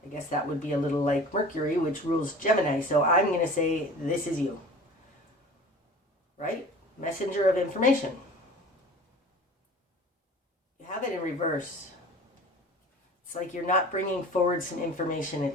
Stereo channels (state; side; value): normal; both; correlation 0.42